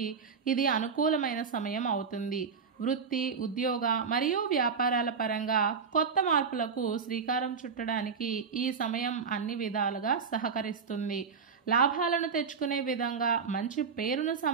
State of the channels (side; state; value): left; quieter; 5.8 dB